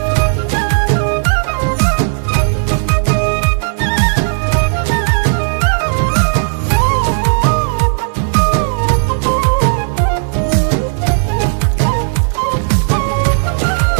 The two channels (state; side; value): silent; left; digital silence